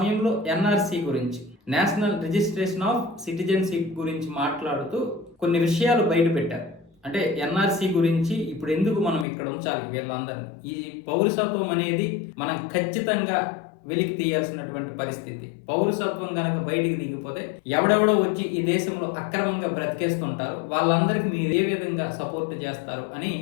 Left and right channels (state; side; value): drops out; right; at 9.2 s